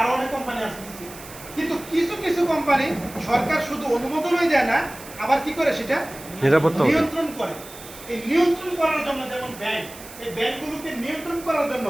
অনেক কোম্পানি আছে, কিন্তু কিছু কিছু কোম্পানি সরকার শুধু অনুমোদনই দেয় না, আবার কি করে সেটা নিরাপত্তা নিয়ন্ত্রণ করে। এই নিয়ন্ত্রণ করার জন্য যেমন ব্যাংক, এই ব্যাংকগুলোকে নিয়ন্ত্রণ করার জন্য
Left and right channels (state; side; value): noise; right; hiss, 16 dB below the sound